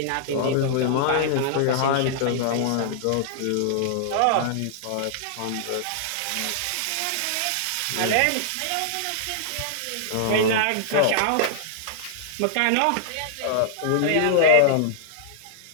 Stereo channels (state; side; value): different; both; correlation -0.01